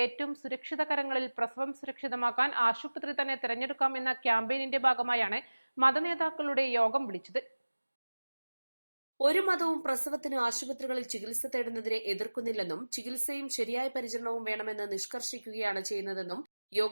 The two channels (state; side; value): inverted; both; correlation -1.00